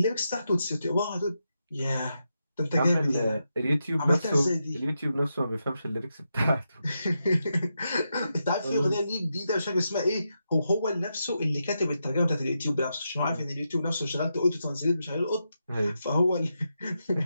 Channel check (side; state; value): both; inverted; correlation -0.86